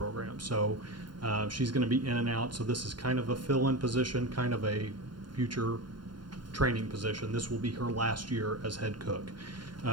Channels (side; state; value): left; late; 0.71 ms